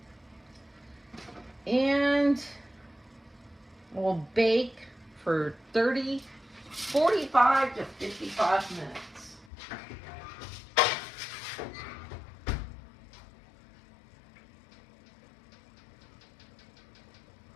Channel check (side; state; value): right; drops out; at 9.5 s